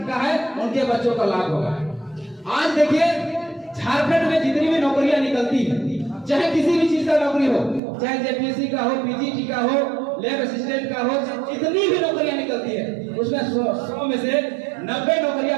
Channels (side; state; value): left; drops out; at 7.8 s